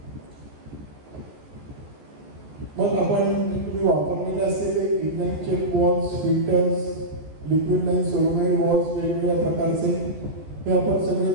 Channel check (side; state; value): left; late; 14 ms